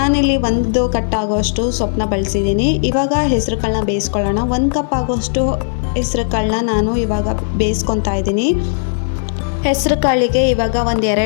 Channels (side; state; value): right; silent; 56 dB below the other